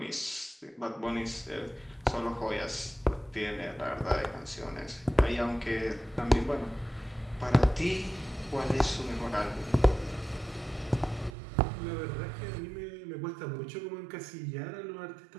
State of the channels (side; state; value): left; drops out; at 11.4 s